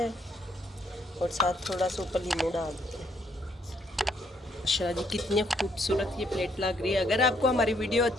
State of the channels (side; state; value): both; normal; correlation 0.70